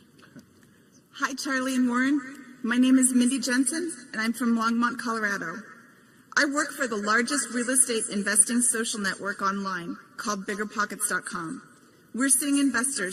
Hi, Charlie and Warren. My name is Mindy Jensen, and I'm from Longmont, Colorado. I work for the largest real estate investing social network online called BiggerPockets.com. We're seeing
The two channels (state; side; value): identical; both; correlation 1.00